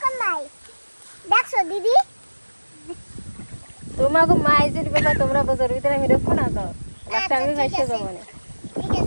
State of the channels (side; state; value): both; inverted; correlation -1.00